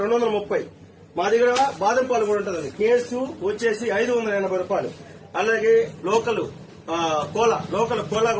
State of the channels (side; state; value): both; identical; correlation 1.00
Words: 230. మా దగ్గర బాదం పాలు కూడా ఉంటుందండి. కేసు వచ్చేసి 580 రూపాయలు. అలాగే లోకల్ కోలా